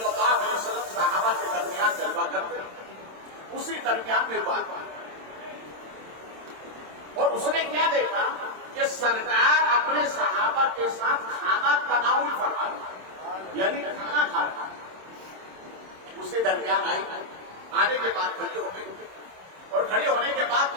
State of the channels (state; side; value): late; left; 26 ms